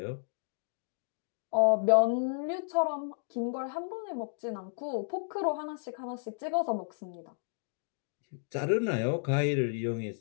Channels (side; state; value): right; silent; digital silence